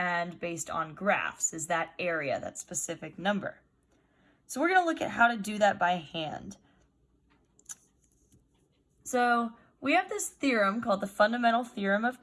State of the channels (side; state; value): both; identical; correlation 1.00